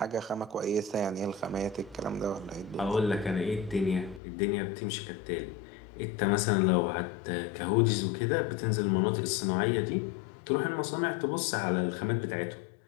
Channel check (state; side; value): drops out; right; at 4.2 s